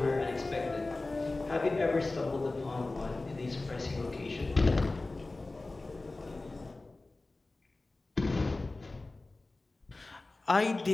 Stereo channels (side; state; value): right; quieter; 3.2 dB